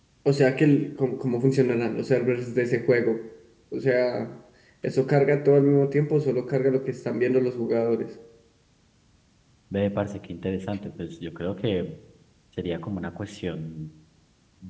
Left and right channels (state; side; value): identical; both; correlation 1.00